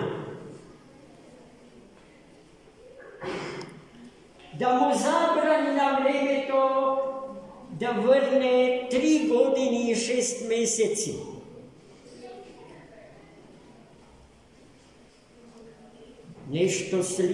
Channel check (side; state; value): both; identical; correlation 1.00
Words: Da mu zabrani na vreme to da vrne 3 godine i 6 meseci. Nešto